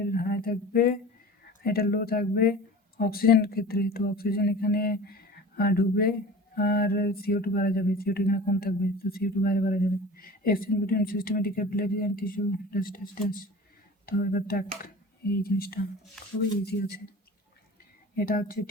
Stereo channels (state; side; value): normal; both; correlation 0.38